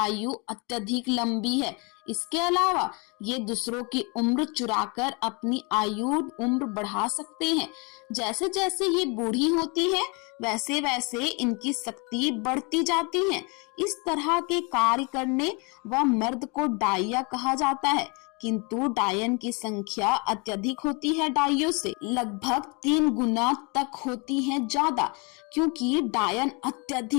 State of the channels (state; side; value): quieter; right; 31.0 dB